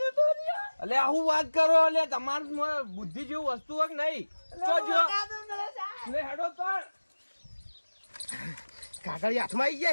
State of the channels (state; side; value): inverted; both; correlation -1.00